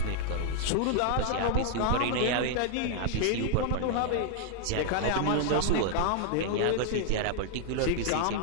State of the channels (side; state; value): both; different; correlation 0.00